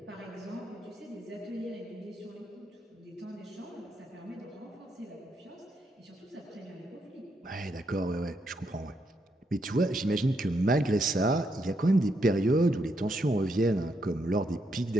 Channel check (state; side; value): normal; both; correlation 0.78